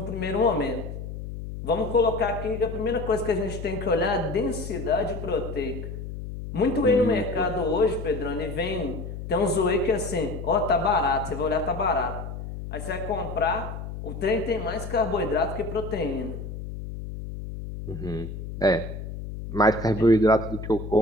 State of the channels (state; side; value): noise; left; hum, 8 dB below the sound